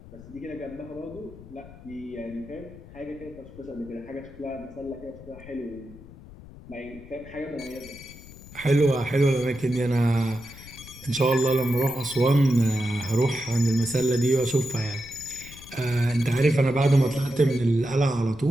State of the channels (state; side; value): noise; left; rumble, 18 dB below the sound